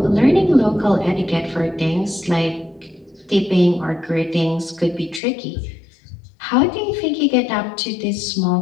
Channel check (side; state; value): right; drops out; at 5.2 s